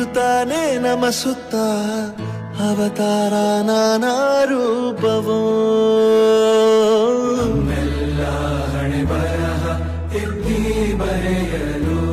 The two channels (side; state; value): both; identical; correlation 1.00